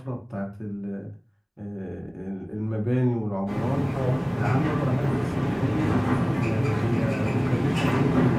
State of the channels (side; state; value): both; identical; correlation 1.00